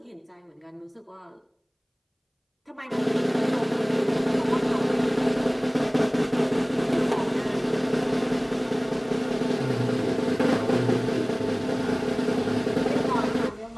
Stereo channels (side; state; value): both; identical; correlation 1.00